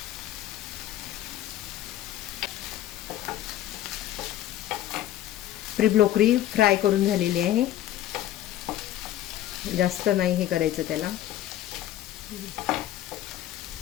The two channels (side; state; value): right; quieter; 13.1 dB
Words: ब्रोकली फ्राय करून झालेली आहे. जास्त नाही हे करायचं त्याला,